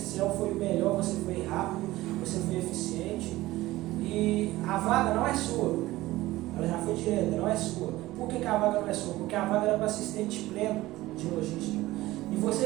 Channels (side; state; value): left; quieter; 17.5 dB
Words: foi o melhor, você foi rápido, você foi eficiente. E a vaga não é sua. Ela já foi direta, não é sua. Por que a vaga não é sua? Porque a vaga era para assistente pleno de logística. E